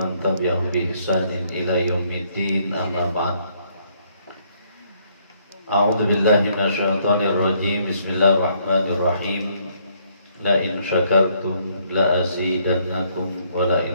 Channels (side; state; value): both; inverted; correlation -0.68